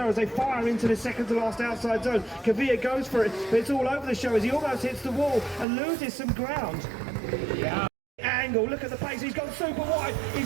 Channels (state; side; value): drops out; left; at 5.7 s